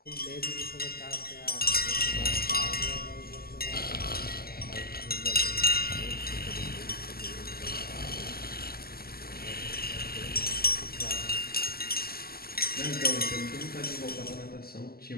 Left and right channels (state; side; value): late; right; 0.45 ms